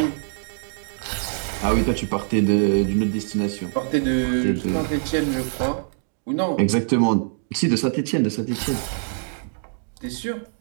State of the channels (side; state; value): left; silent; digital silence